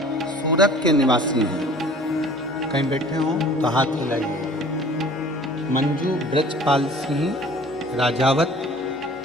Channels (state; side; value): normal; both; correlation 0.48